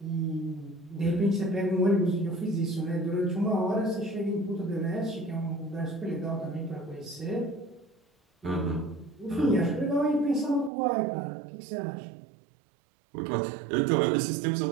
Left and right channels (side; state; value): left; drops out; at 10.7 s